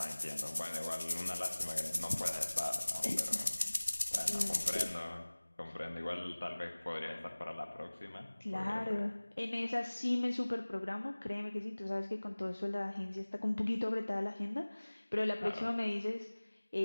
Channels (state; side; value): inverted; both; correlation -1.00